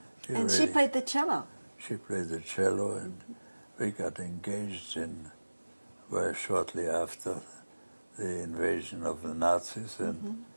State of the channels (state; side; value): inverted; both; correlation -1.00